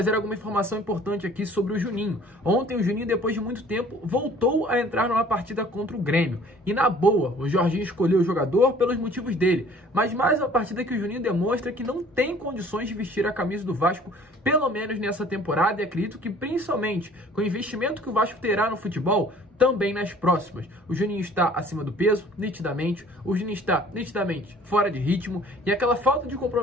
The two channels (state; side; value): normal; both; correlation 0.52